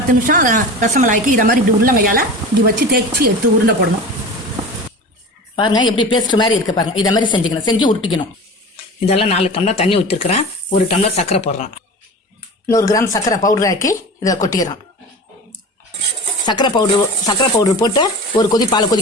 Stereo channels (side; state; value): both; normal; correlation 0.34